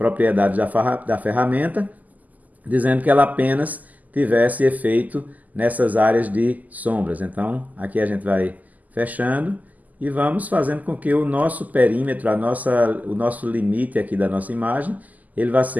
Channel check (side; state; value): left; late; 0.080 ms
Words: da ferramenta, dizendo que ela apenas tivesse efeito nessas áreas de sombras. Então, aqui a gente vai fechando e vamos fazendo com que o nosso perímetro, o nosso limite aqui da nossa imagem, ele vá